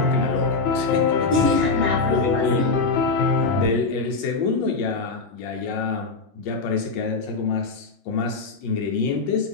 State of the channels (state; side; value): quieter; right; 4.0 dB